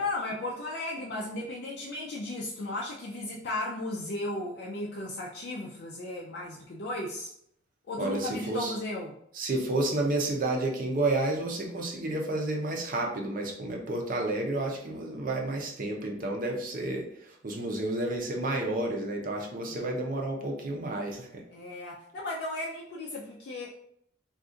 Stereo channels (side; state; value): both; normal; correlation 0.32